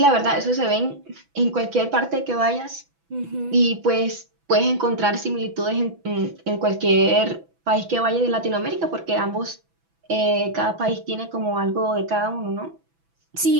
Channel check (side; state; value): left; late; 6.0 ms